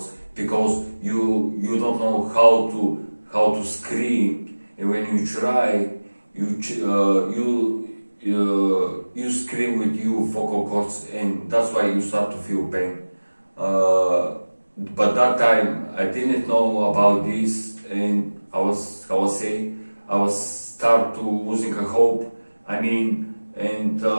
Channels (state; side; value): inverted; both; correlation -1.00